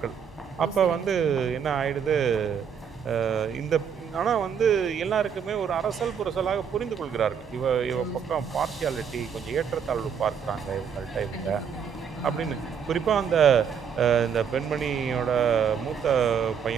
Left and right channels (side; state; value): left; quieter; 7.3 dB